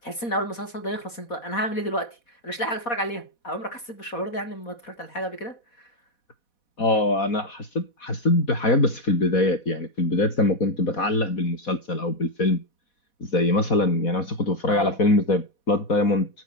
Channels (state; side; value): late; right; 4.1 ms